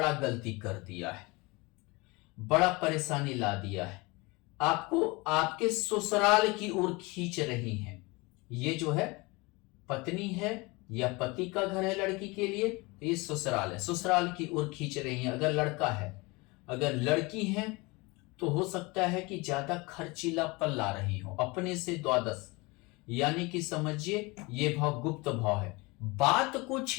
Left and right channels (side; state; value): right; quieter; 25.2 dB